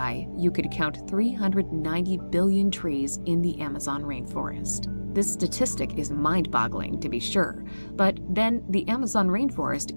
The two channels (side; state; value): both; inverted; correlation -1.00